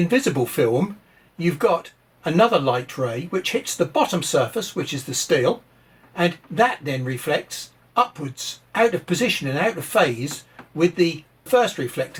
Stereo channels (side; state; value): both; identical; correlation 1.00